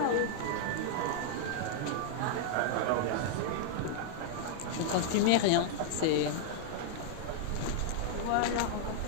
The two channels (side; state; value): both; different; correlation -0.01